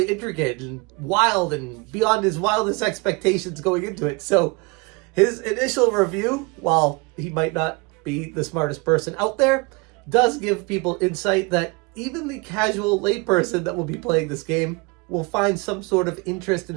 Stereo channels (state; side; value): quieter; left; 28.4 dB